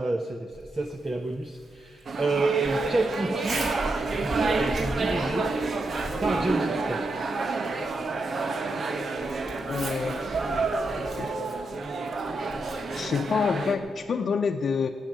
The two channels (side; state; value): both; normal; correlation 0.83